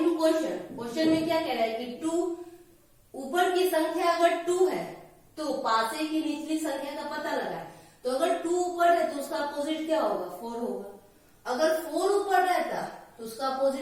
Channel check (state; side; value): identical; both; correlation 1.00